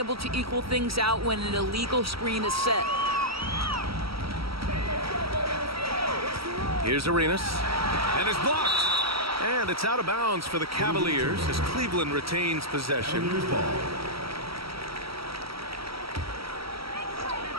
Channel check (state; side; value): late; left; 0.75 ms